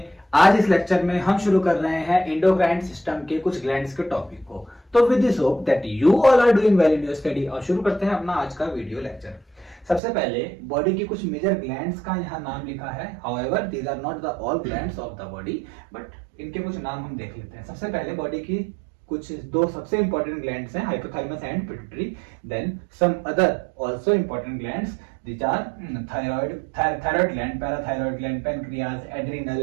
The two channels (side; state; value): left; drops out; at 10.0 s